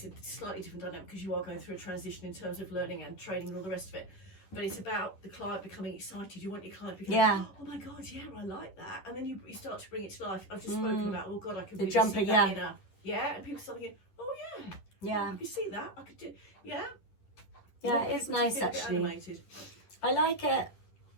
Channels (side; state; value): right; late; 10 ms